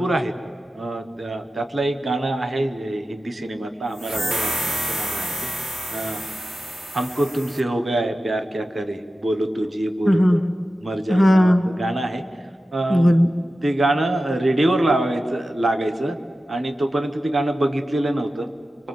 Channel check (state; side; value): normal; both; correlation 0.94